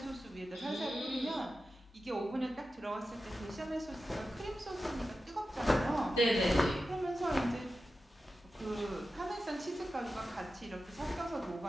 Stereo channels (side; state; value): both; normal; correlation 0.93